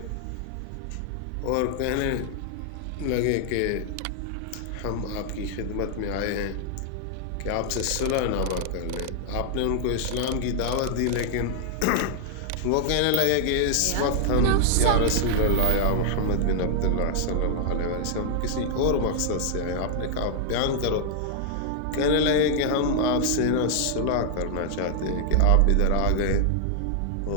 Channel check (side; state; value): both; different; correlation -0.01